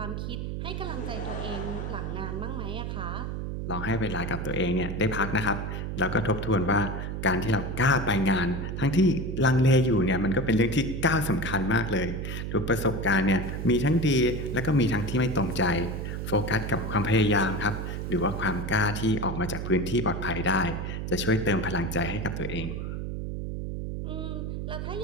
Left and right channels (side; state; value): right; noise; hum, 4 dB below the sound